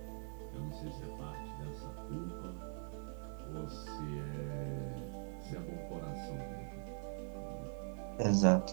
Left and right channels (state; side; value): silent; left; digital silence